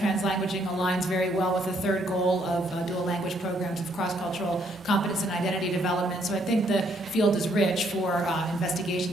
aligns very well with the third goal of dual language programs of cross-cultural competence and identity development. So I think the field is rich for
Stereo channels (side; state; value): both; normal; correlation 0.70